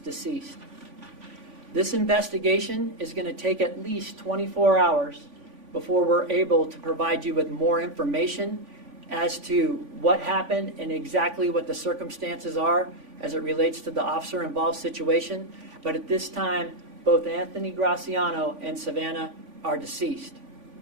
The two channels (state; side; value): late; left; 3.5 ms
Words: deceased. This investigation is going to take at least 24 hours before we're able to provide you with more information as to what happened and exactly what the circumstances are as it relates to the officer-involved situation. But at this time, both Anthony Graciano and Savannah are deceased.